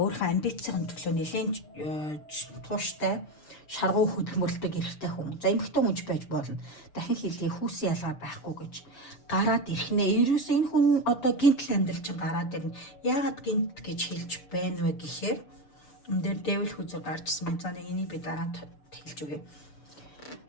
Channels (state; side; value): late; right; 6.8 ms